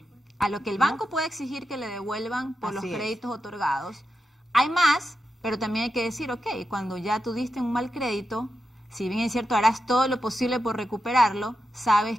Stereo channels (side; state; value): both; normal; correlation 0.88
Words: A lo que el banco puede exigir que le devuelvan por los créditos otorgados. Hay más, pero también hay que decir, ok, cuando ya tú diste un mal crédito, si bien es cierto, harás todo lo posible por recuperarlo, sabes